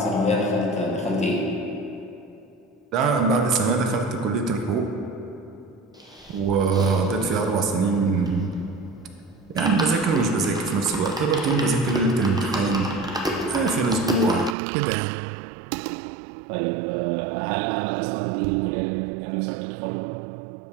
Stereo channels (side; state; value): left; drops out; at 14.6 s